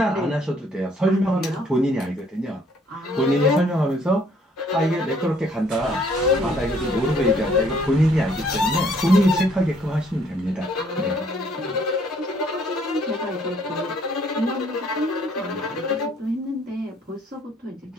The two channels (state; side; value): normal; both; correlation 0.63